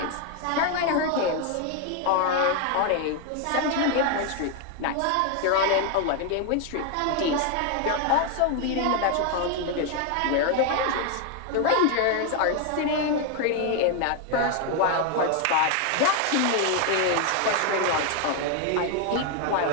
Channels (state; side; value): different; both; correlation 0.01